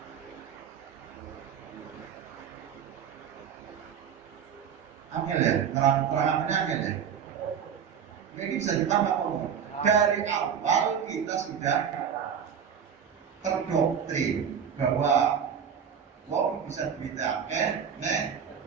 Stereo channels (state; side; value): quieter; left; 7.8 dB